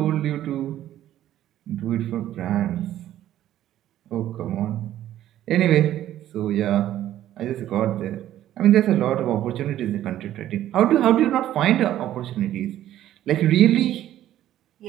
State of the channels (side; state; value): left; quieter; 12.6 dB